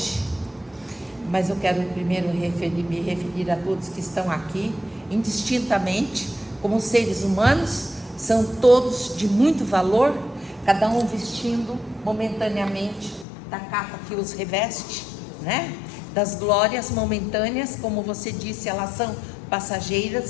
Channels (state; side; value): drops out; right; at 13.2 s